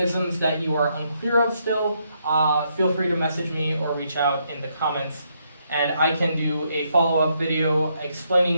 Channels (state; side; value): inverted; both; correlation -0.76